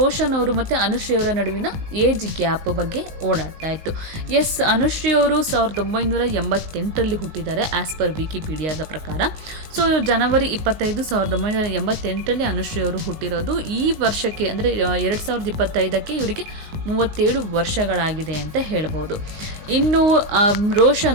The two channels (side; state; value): left; late; 19 ms